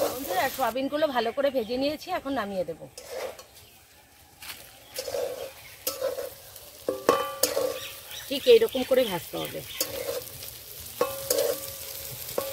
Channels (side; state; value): both; identical; correlation 1.00